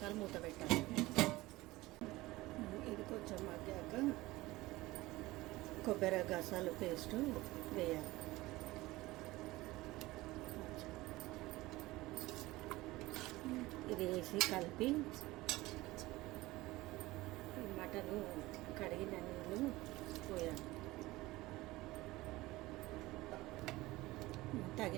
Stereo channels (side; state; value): left; quieter; 19.2 dB